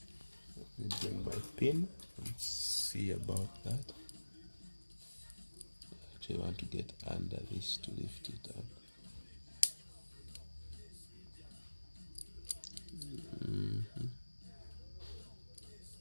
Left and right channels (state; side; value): inverted; both; correlation -1.00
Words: Let me bring my pin and see about that. Actually, I want to get under this to lift it up.